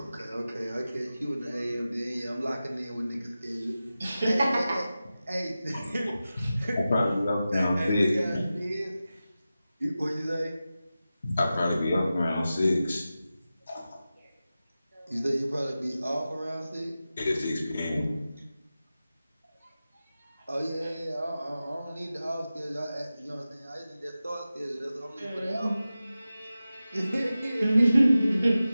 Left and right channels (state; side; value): inverted; both; correlation -0.94